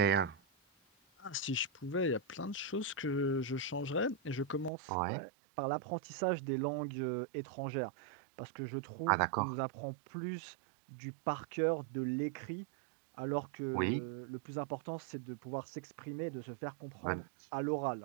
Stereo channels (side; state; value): left; drops out; at 4.7 s